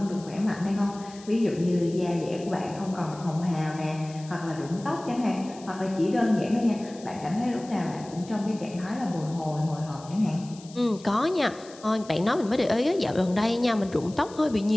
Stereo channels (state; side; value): noise; left; hiss, 21 dB below the sound